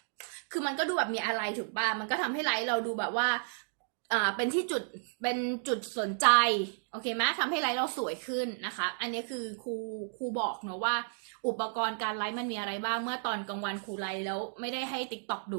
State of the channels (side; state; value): left; silent; digital silence